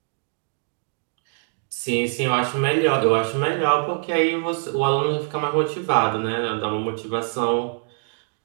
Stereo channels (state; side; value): silent; left; 63 dB below the other